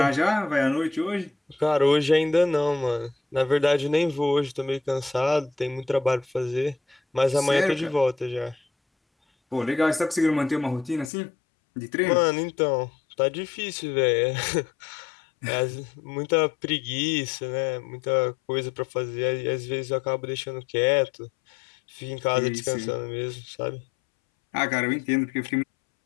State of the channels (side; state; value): right; drops out; at 11.1 s